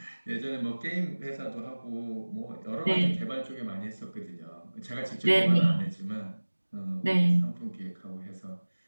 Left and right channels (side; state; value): both; inverted; correlation -1.00